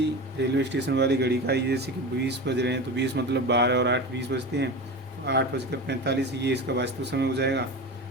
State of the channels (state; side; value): normal; both; correlation 0.27